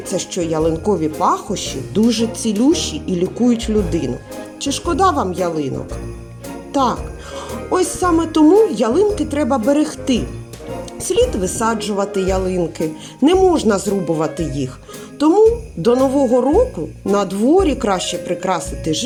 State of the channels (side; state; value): both; identical; correlation 1.00